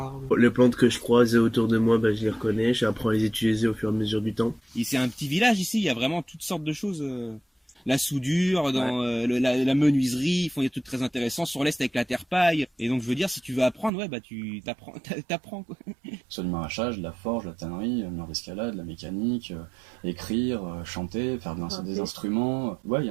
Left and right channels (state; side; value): drops out; left; at 13.9 s